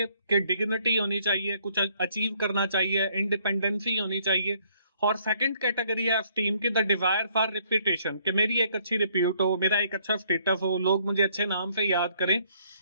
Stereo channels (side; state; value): both; inverted; correlation -0.65